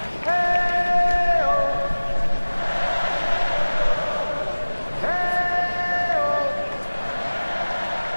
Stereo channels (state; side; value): inverted; both; correlation -1.00